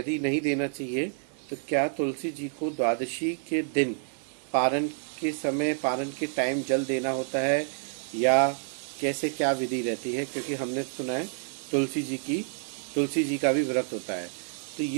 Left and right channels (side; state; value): left; silent; digital silence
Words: नहीं देना चाहिए तो क्या तुलसी जी को द्वादशी के दिन पारण के समय, पारण के टाइम जल देना होता है, या कैसे क्या विधि रहती है? क्योंकि हमने सुना है तुलसी जी का भी व्रत होता है। तो